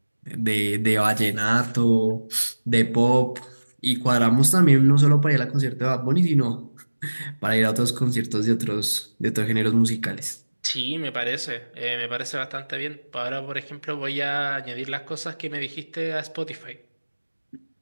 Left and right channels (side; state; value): both; inverted; correlation -1.00